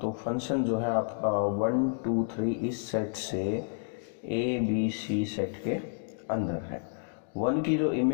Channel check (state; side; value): silent; right; digital silence